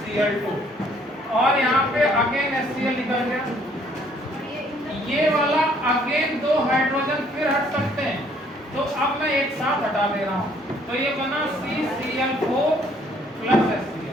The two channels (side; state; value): both; normal; correlation 0.62